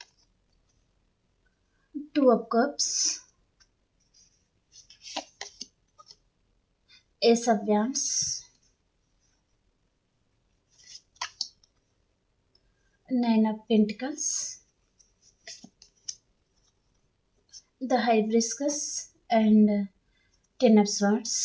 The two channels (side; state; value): both; identical; correlation 1.00